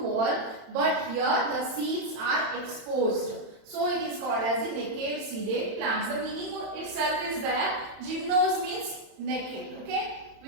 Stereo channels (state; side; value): late; left; 31 ms